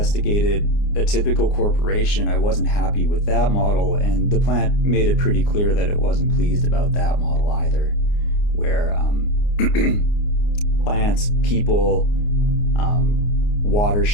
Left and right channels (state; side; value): late; right; 29 ms